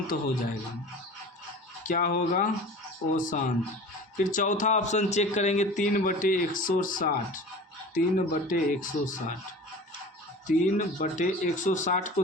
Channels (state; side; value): normal; both; correlation 0.38